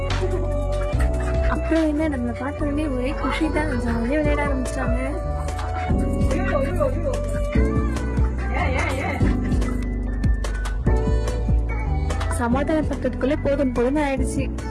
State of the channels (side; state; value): both; identical; correlation 1.00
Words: அப்புறம் என்ன, நம்ம பார்த்தோடனே ஒரே குஷி தான், ஜாலியாக விளையாட ஆரம்பிச்சிட்டாங்க. சமாதானப்படுத்துறதுக்குள்ளே போதும் போதும்னு ஆயிடுச்சு.